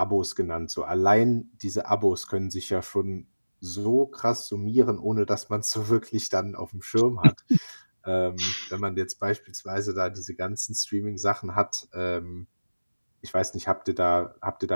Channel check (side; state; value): both; inverted; correlation -1.00